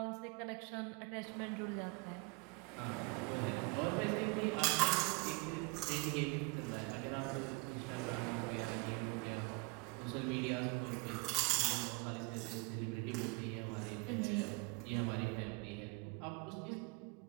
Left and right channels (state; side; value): quieter; left; 28.6 dB